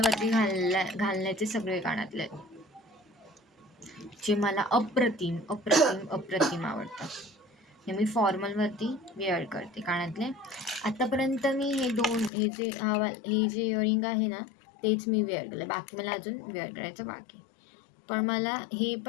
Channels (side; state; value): right; drops out; at 12.3 s